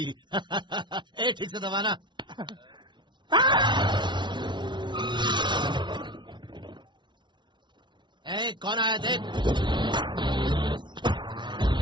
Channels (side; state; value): left; late; 0.23 ms